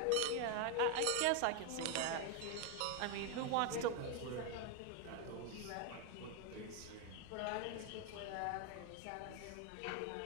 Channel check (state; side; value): different; both; correlation 0.01